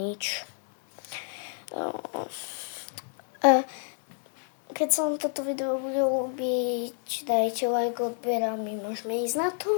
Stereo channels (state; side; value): silent; right; 58 dB below the other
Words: Keď sa vám toto video bude ľúbiť, dajte like, odber a my môžeme ísť na to.